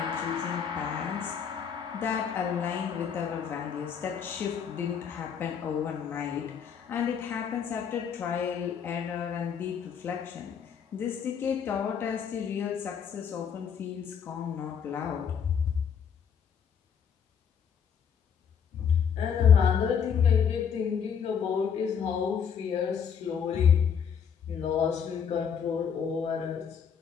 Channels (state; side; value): quieter; right; 7.3 dB